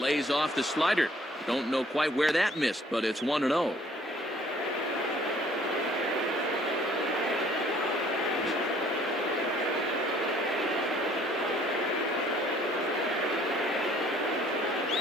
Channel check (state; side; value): normal; both; correlation 0.58